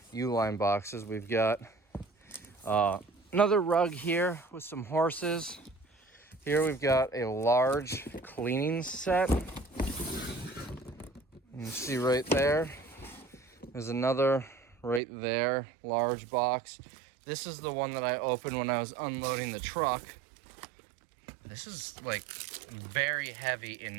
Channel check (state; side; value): drops out; left; at 15.0 s